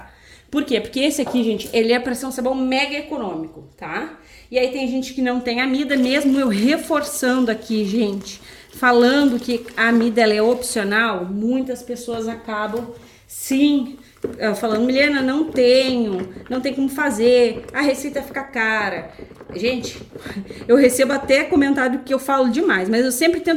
Por quê? Porque esse aqui, gente, ele é para ser um sabão mega econômico, tá? E aí tem gente que não tem amida, mesmo eu reforçando aqui, gente, falando que a amida ela é opcional, muitas pessoas acabam Sim, falando, Milena, não tenho, não tem como fazer, a receita fica cara. Gente, eu recebo até comentário que eu falo demais, mas eu sempre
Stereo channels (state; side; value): identical; both; correlation 1.00